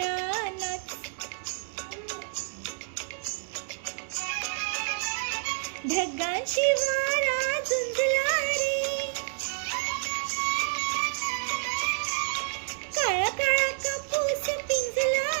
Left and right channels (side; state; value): left; silent; 59 dB below the other